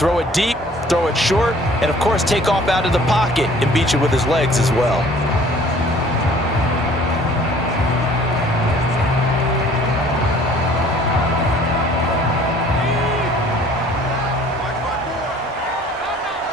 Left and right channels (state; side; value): normal; both; correlation 0.53